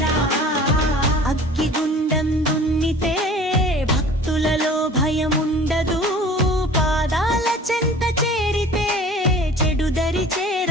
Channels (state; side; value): normal; both; correlation 0.44